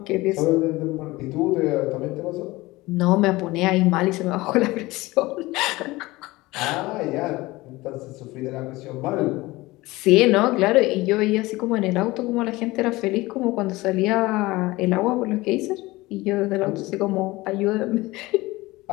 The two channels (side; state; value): right; quieter; 20.3 dB